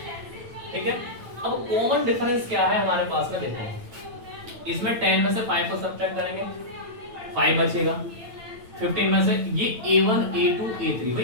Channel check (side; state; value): left; late; 9.0 ms